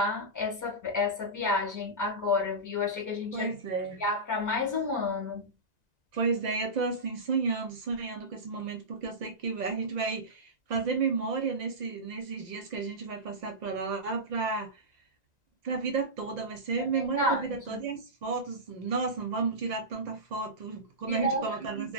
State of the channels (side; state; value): left; late; 1.9 ms